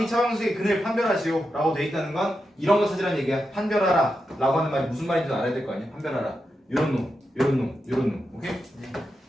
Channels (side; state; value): both; normal; correlation 0.88